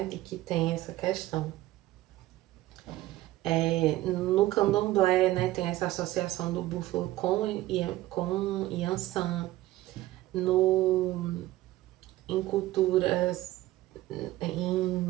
de que tem essa questão. No candomblé, né, tem essa associação do búfalo com Yansan. Em culturas,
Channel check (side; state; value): left; quieter; 16.4 dB